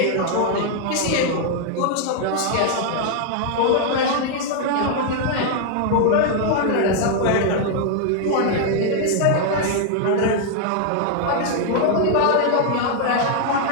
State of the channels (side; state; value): both; different; correlation 0.00